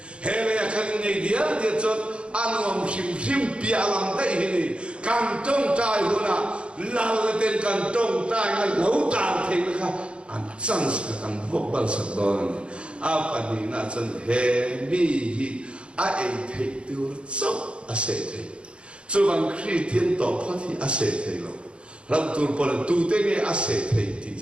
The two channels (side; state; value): left; late; 0.057 ms